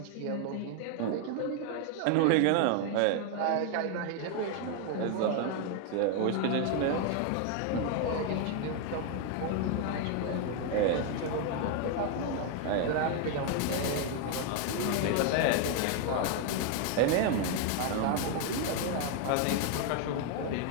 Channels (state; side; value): different; both; correlation 0.01